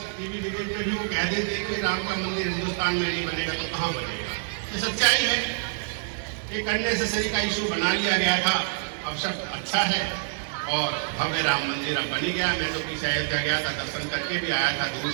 टीवी डिबेट में भी वो कह देते कि राम का मंदिर हिंदुस्तान में नहीं बनेगा तो कहाँ बनेगा। ये सच्चाई है। एक अननेसेसरी का इशू बना लिया गया था, अब सब अच्छा है और भव्य राम मंदिर अब बनी गया। मैं तो पीछे अयोध्या गया था, दर्शन करके भी आया था, दूर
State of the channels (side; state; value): left; silent; 59 dB below the other